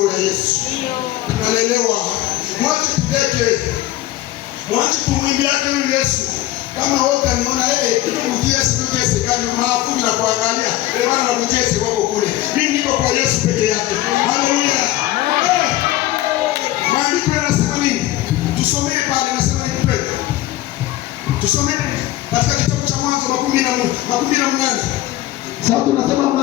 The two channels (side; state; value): right; quieter; 15.4 dB